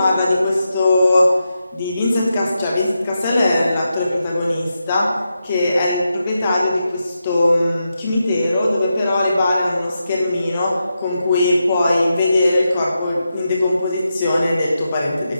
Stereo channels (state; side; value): inverted; both; correlation -0.87